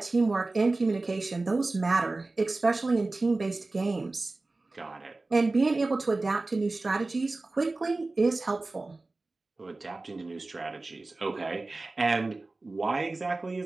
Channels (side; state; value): left; quieter; 3.3 dB